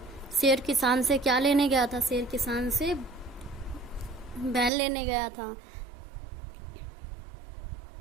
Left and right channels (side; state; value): left; drops out; at 4.7 s